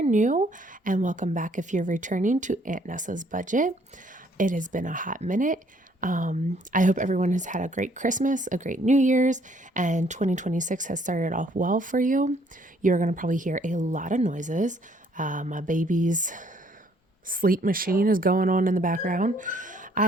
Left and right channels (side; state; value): both; normal; correlation 0.64